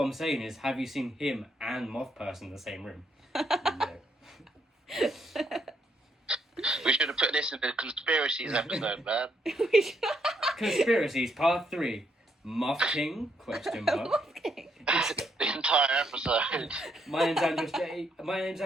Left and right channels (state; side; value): normal; both; correlation 0.74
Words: I'm saying is, have you seen him and Moth Person in the same room? No. We should have put this in the conspiracies episode, man. Conspiracies Part 3. Moth King? Question mark. Moth King. The entire episode. My name's Andrew